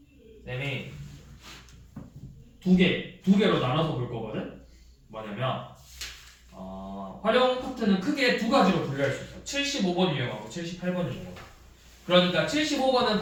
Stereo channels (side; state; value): both; identical; correlation 1.00